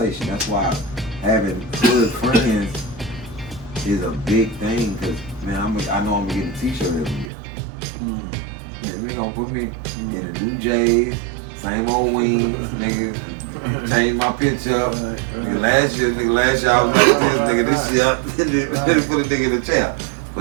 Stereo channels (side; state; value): left; drops out; at 7.3 s